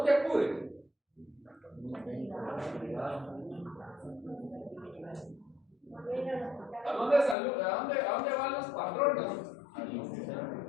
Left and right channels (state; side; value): drops out; right; at 7.4 s